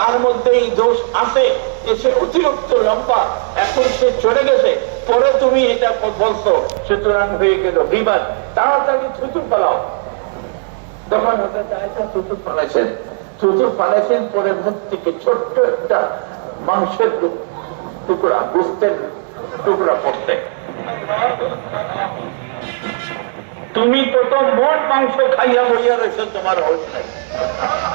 মধ্যে এই দোষ আছে যে সে অতিরিক্ত লম্বা, এখন সে চলে গেছে, পরে তুমি এটা বলছো, সুতরাং হয়ে গেল গীবত। তাড়াতাড়ি থুতু ফেলাও। তখন হযরত আয়েশা থুতু ফেলেছেন, পরে মুখ থেকে ছোট্ট একটা মাংসের টুকরা, গোস্তের টুকরা পড়তে। তুমি কত মোট মাংস খাইয়া বইয়া রয়েছে, তোমার হোশ নাই।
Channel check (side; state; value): left; silent; digital silence